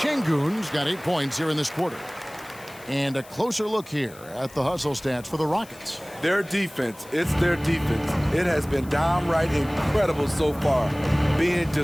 Şengün's got 8 points here in this quarter. And a closer look here at the hustle stats for the Rockets. Their defense, it's their defense. It has been downright incredible so far, being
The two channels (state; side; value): noise; left; hiss, 22 dB below the sound